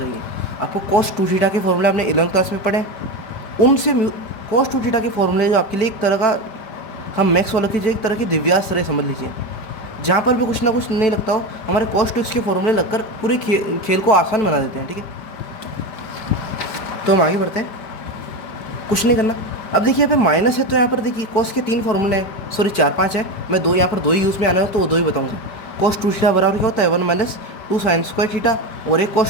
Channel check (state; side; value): late; right; 5.0 ms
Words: आपको cos 2 थीटा के फॉर्मूले आपने 11th क्लास में पढ़े, उनसे cos 2 थीटा के फॉर्मूले जो आपके लिए एक तरह का, हम मैक्स वालों की जो एक तरह की दिव्यास्त्र है समझ लीजिए, जहाँ पर भी कुछ ना कुछ नहीं लगता हो, हमारे cos 2x के फॉर्मूले लगकर पूरे खेल को आसान बना देते हैं, ठीक है। तो हम आगे बढ़ते हैं, कुछ नहीं करना। अब देखिए यहाँ पे माइनस है, तो यहाँ पर देखिए cos के 3 फॉर्मूले हैं, सॉरी 4 5 है, मैं दो यहाँ पर दो ही यूज़ में आना है तो वो दो ही बताऊँगा। cos 2 थीटा बराबर क्या होता है, 1 माइनस 2 साइन स्क्वायर थीटा, और एक